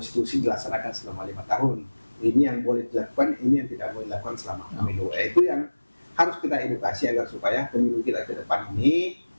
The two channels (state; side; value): inverted; both; correlation -1.00